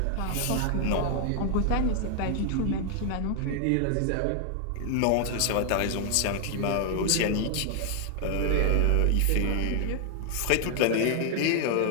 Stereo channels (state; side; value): different; both; correlation 0.00